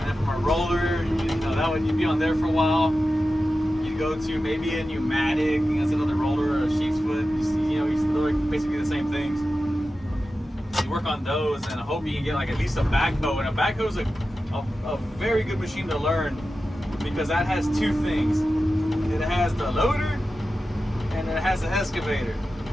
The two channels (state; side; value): normal; both; correlation 0.93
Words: from a roller, you'd be on there for a while. You'd go to maybe a pneumatic, that's another roller, or a sheep's foot. They're basically the same things. You work on those, and I hope you can get at least a backhoe. And a backhoe is a very good machine to learn because that has 2 things. It has the loader and it has the excavator.